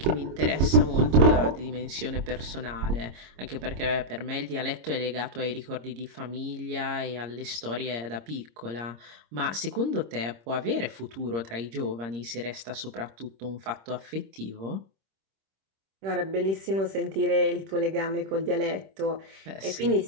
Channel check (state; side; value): late; left; 26 ms